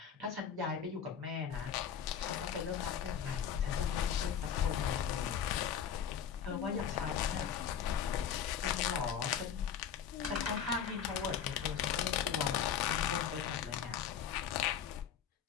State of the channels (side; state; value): right; quieter; 8.4 dB